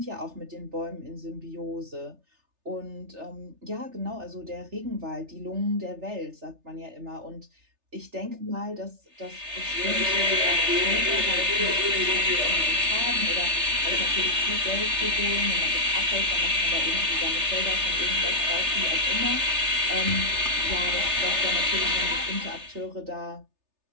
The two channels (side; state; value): left; late; 3.3 ms